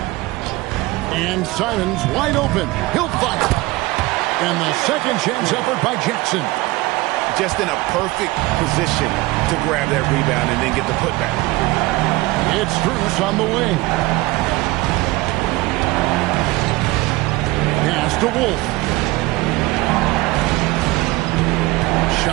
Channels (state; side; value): quieter; left; 20.6 dB